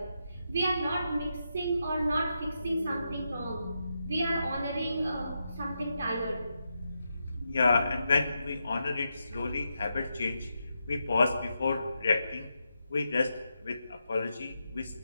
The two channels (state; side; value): inverted; both; correlation -0.85